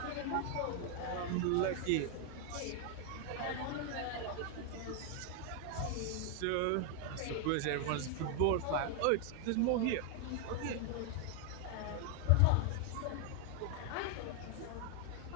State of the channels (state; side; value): different; both; correlation 0.00